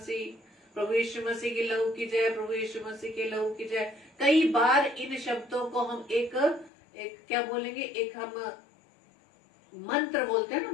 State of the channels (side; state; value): right; drops out; at 6.7 s